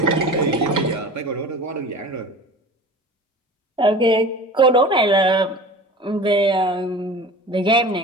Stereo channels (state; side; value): normal; both; correlation 0.38